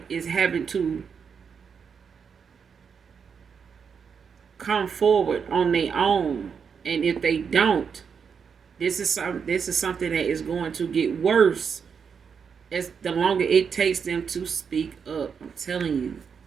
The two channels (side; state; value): left; quieter; 6.5 dB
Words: is having to come forward on their own, and if they don't, this is something that is going to get worse as the longer it takes them to speak up. I'm telling you,